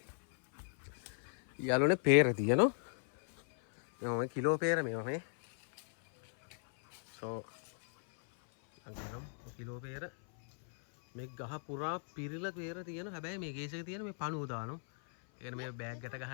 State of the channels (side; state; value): right; silent; 53 dB below the other